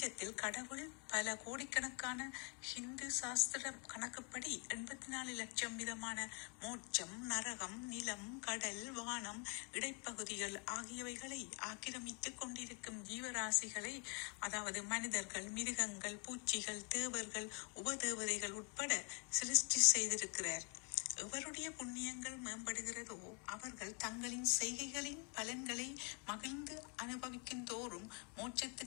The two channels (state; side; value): quieter; right; 36.8 dB